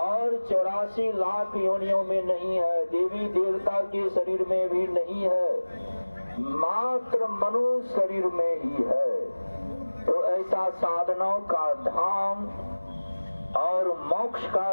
84 लाख योनियों में नहीं है, देवी देवता के शरीर में भी नहीं है, मात्र मनुष्य शरीर में ही है। तो ऐसा साधनों का धाम और मोक्ष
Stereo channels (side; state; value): both; inverted; correlation -1.00